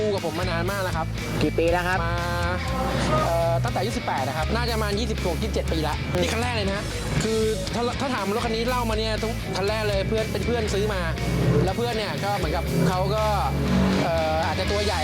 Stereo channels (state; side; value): identical; both; correlation 1.00